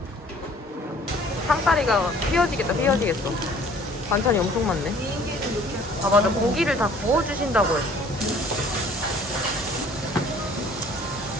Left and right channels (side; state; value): both; normal; correlation 0.53